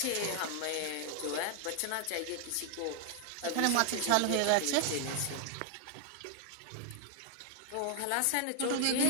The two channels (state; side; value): different; both; correlation 0.00